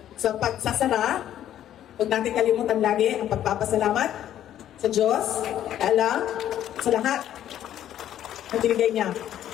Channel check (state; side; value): quieter; right; 11.4 dB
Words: sa pagsasara, huwag natin kalimutan lagi ang pagpapasalamat sa Diyos, Allah, sa lahat na binigay niya